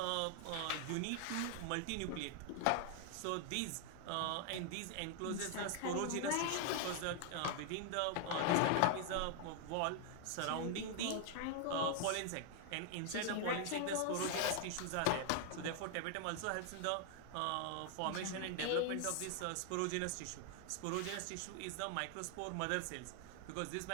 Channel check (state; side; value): different; both; correlation 0.00